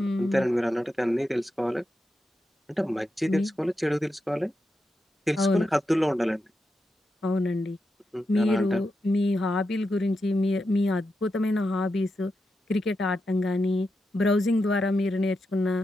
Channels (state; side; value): normal; both; correlation 0.87